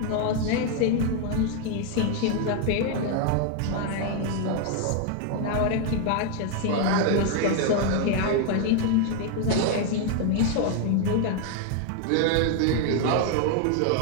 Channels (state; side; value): different; both; correlation 0.01